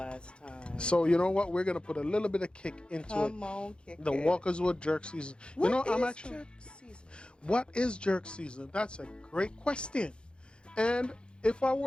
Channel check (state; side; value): late; right; 0.054 ms